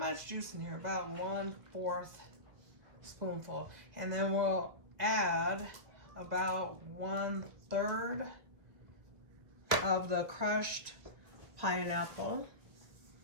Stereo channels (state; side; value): late; left; 1.9 ms